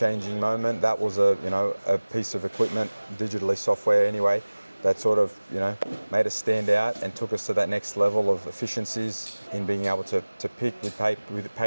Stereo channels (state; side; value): inverted; both; correlation -1.00